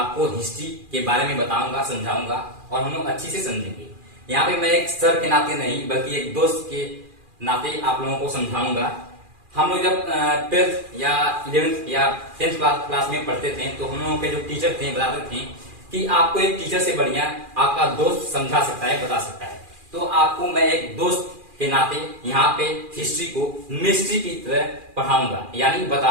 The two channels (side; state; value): left; late; 2.4 ms